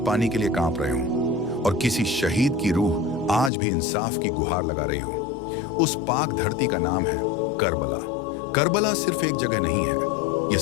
पानी के लिए कांप रहे हों और किसी शहीद की रूह आज भी इंसाफ की गुहार लगा रही हो। उस पाक धरती का नाम है करबला। करबला सिर्फ एक जगह नहीं है, ये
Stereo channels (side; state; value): right; drops out; at 3.5 s